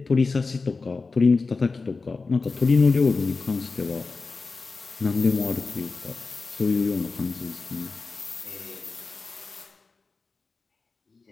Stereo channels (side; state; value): right; quieter; 4.1 dB